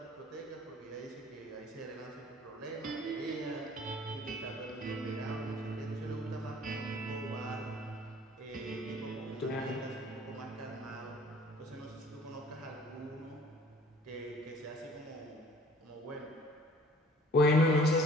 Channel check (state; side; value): normal; both; correlation 0.53